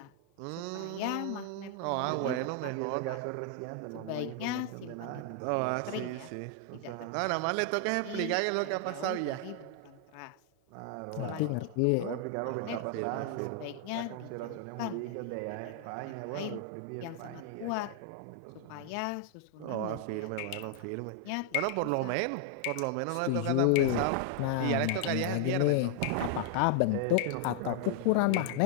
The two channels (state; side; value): different; both; correlation 0.00